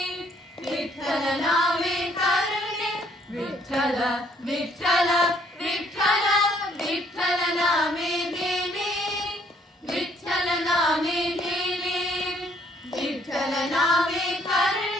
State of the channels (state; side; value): normal; both; correlation 0.65